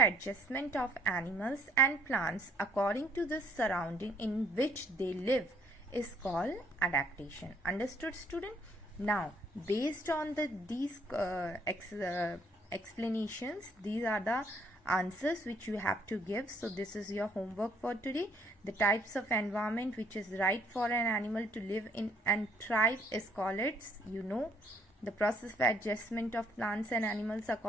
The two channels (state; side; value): normal; both; correlation 0.64